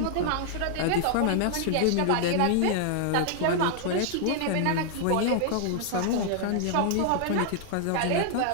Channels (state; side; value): different; both; correlation 0.00